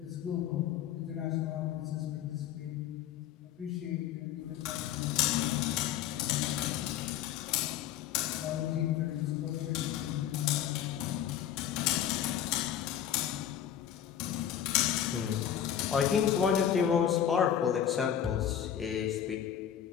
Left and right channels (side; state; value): right; quieter; 9.9 dB